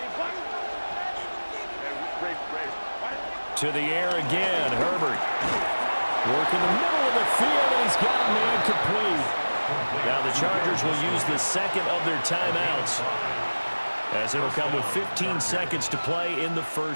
To the air again, Herbert. Working the middle of the field, and he's got a man complete. Now the Chargers will use the second of their timeouts as it'll come with 15 seconds to play in the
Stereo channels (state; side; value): inverted; both; correlation -1.00